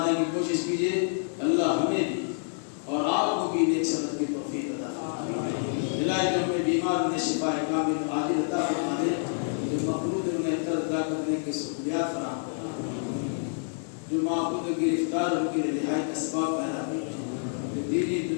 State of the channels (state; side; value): silent; right; digital silence